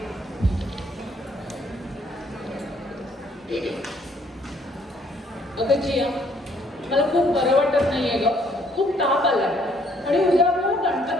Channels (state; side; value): normal; both; correlation 0.65